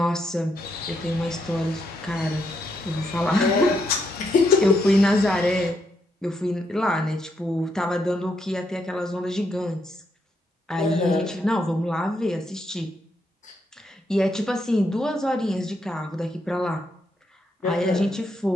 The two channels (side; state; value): both; normal; correlation 0.78